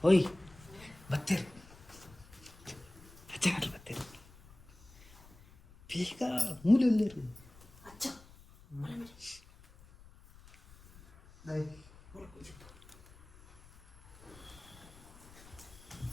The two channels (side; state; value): left; noise; rumble, 22 dB below the sound